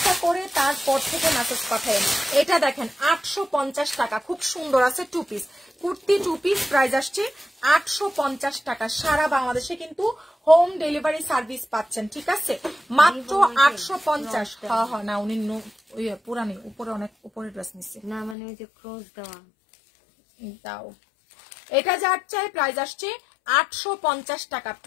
করে তারপর থেকে মেসেজ পাঠায়েন। এটা দেখেন 850 টাকা। খুব সুন্দর আছে। 2 পিস কুর্তি, 2 পিস, প্রাইস আসছে 850 টাকা। সারা বাংলাদেশে কিন্তু হোম ডেলিভারি সার্ভিস পাচ্ছেন, ঠিক আছে? মাত্র 850। হ্যাঁ হ্যাঁ না, উনি পুরানি, উপরে অনেক উপরে ড্রেস নিচ্ছে না, মানে ওই যে ক্রস দেওয়া দাও। এটা যার চাই প্রাইস আসছে 850 টাকা।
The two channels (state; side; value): drops out; right; at 18.4 s